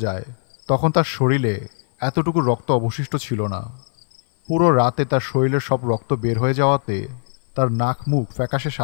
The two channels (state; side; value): silent; right; 56 dB below the other